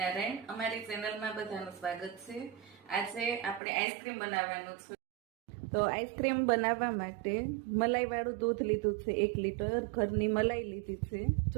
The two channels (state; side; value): drops out; left; at 3.6 s